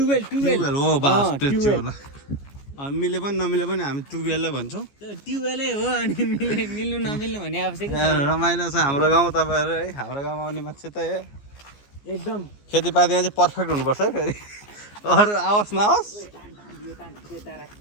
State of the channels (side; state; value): right; late; 14 ms